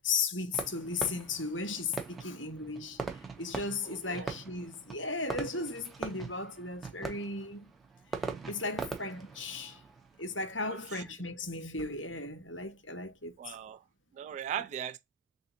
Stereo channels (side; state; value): both; normal; correlation 0.14